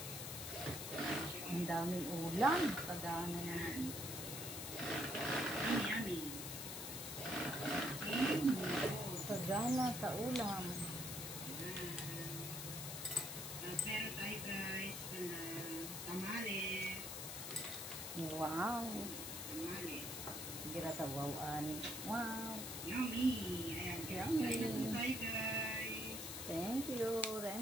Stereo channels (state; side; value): noise; left; hiss, 6 dB below the sound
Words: Ang daming ulam. Pagana naman. Yummy, yummy. Pagana sa ulam. At meron tayo guys, tamales. Wow. Tamales. Gira sa wow-an. Wow. Yummy. Ayan guys. Yummy. Kain na po tayo guys. Thank you,